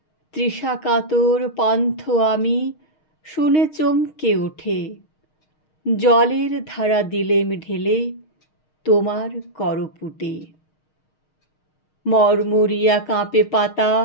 তৃষাকাতর পান্থ আমি, শুনে চমকে ওঠে। জলের ধারা দিলেম ঢেলে, তোমার করপুটে। মরমরিয়া কাঁপে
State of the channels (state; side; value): late; right; 6.4 ms